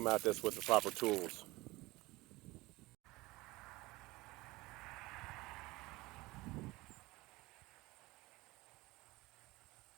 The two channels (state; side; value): quieter; left; 20.7 dB